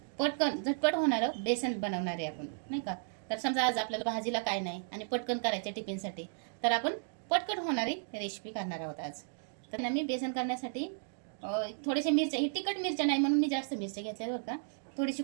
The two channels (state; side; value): silent; left; digital silence